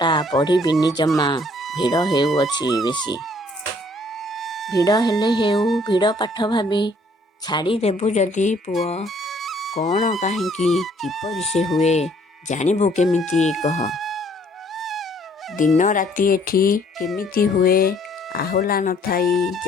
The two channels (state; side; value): normal; both; correlation 0.62